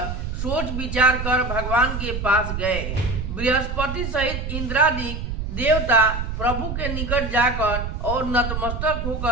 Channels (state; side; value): noise; right; rumble, 4 dB below the sound